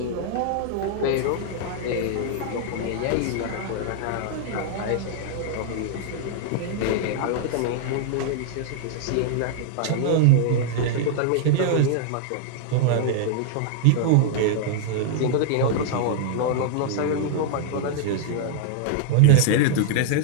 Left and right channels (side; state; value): both; different; correlation -0.01